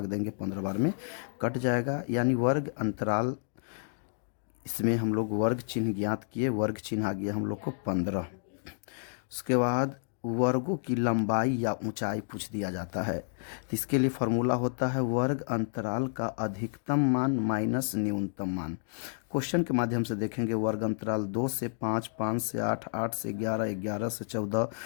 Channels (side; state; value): right; silent; digital silence